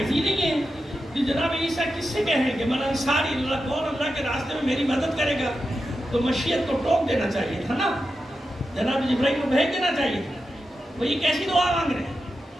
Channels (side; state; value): both; normal; correlation 0.89